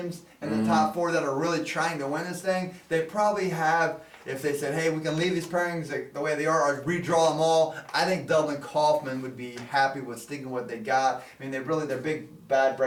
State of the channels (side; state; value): both; identical; correlation 1.00